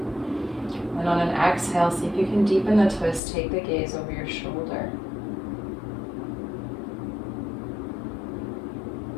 And on an exhale, see if you can deepen the twist, take the gaze over your shoulder.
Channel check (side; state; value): right; drops out; at 3.2 s